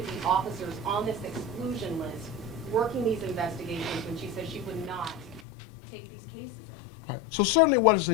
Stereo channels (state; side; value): drops out; right; at 5.4 s